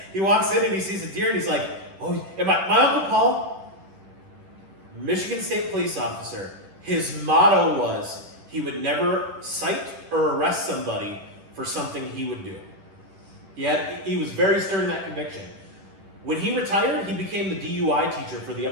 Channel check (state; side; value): late; left; 10 ms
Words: He walks in and he sees a deer and he's like, oh, and my Uncle Paul, Michigan State Police officer, his motto was he would never cite or arrest somebody for something he would do. He was very stern in that conviction. When he retired, he became the DUI teacher for the